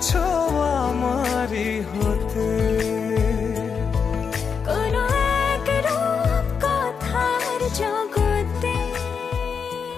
আমারই হতে কোনো এক রূপ কথার জগতে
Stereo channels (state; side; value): quieter; right; 6.2 dB